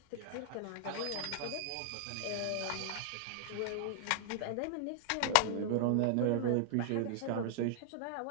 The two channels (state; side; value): different; both; correlation -0.01